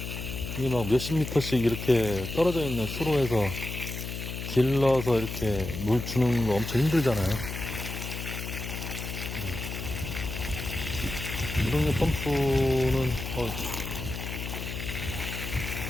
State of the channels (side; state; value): left; noise; hum, 6 dB below the sound